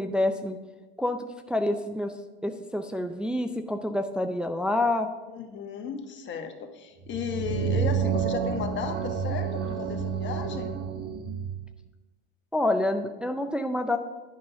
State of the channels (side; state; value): both; normal; correlation 0.58